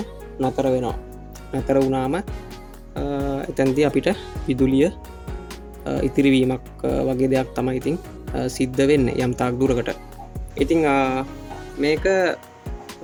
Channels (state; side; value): identical; both; correlation 1.00